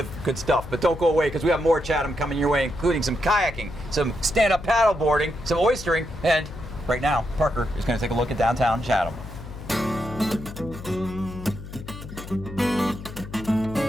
good stuff. But don't go away, because we have more Chatham coming your way, including some kayaking, some stand-up paddle boarding, some oystering, and right now, Parker is going to take a look at downtown Chatham.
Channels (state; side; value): noise; left; hum, 12 dB below the sound